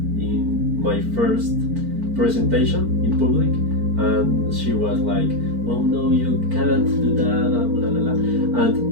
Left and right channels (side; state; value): left; late; 4.5 ms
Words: my first presentation in public, and she was like, "Oh no, you can't do that," blah, blah, blah. And